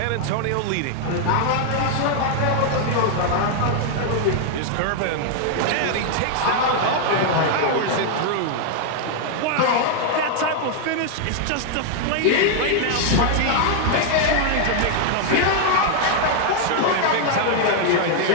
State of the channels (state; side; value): different; both; correlation 0.00